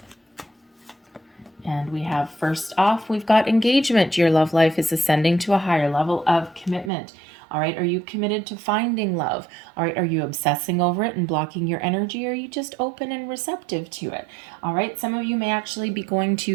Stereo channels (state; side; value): drops out; left; at 6.9 s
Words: And we have first off, we've got engagement. Your love life is ascending to a higher level of commitment. All right, are you committed to finding love? All right, are you obsessing over it and blocking your energy? Or are you just open and receptive to it? All right, some of you may actually be going